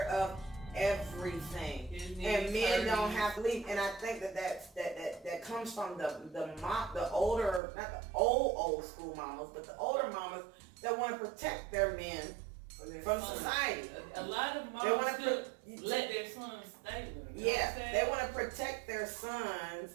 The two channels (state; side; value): drops out; left; at 7.6 s